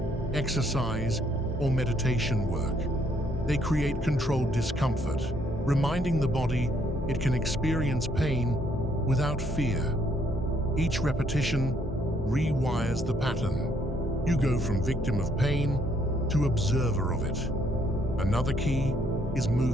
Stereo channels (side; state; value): both; normal; correlation 0.69